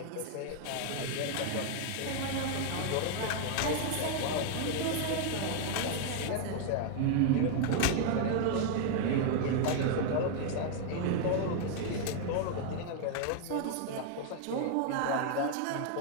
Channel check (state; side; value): different; both; correlation 0.00